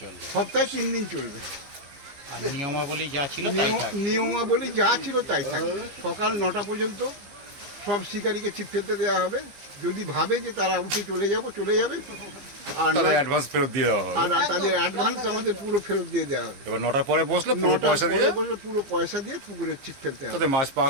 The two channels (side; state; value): left; late; 15 ms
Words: সপ্তাহে 3 দিন চলবে। আর নিয়মাবলী যা ছিল তাই থাকবে। নিয়মাবলী যা ছিল তাই থাকবে। সকাল 9টা পর্যন্ত সব শিকারীকে ছিপ ফেলতে দেওয়া হবে। যদি ভাবে যে তারা উঠে চলে যাবে, আর তাদের অ্যাডভান্স ফেরত দিয়ে দেওয়া হবে। আর তাদের অ্যাডভান্স আমাদের পুরো ফেরত দিয়ে দেওয়া হবে। এবার 9টার পরে বসলে পুরো পয়সা দিয়ে পুকুরে ছিপ ফেলতে হবে। তাদের মাছ